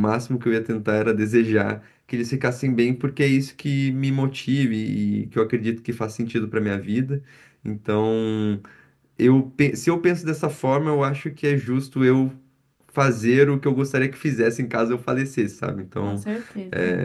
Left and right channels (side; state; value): both; identical; correlation 1.00